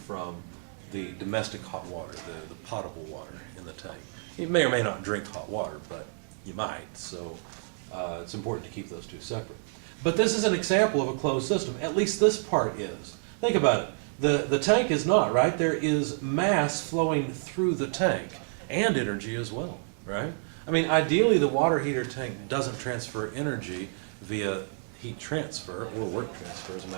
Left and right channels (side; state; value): left; silent; digital silence